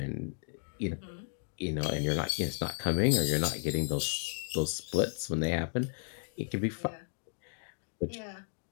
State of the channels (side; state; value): right; silent; 55 dB below the other